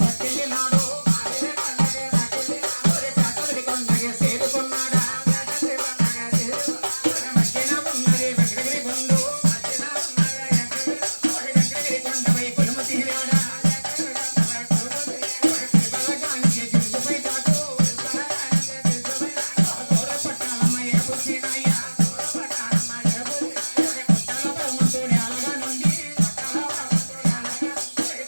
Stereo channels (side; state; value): both; inverted; correlation -1.00